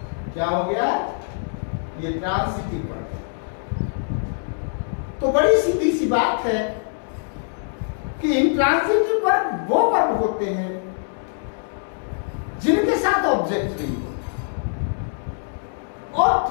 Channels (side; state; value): right; silent; 63 dB below the other